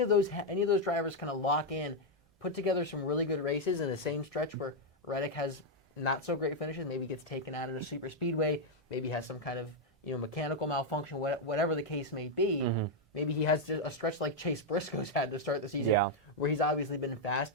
of those drivers kind of lock in, put together some really good races in the same stretch where Reddick has not so great finishes, maybe gets taken out at a super speedway, maybe has some kind of mechanical malfunction, whatever the case may be. Maybe he has a stretch like Chase Briscoe's had to start the season, where he's obviously been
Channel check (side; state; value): both; normal; correlation -0.01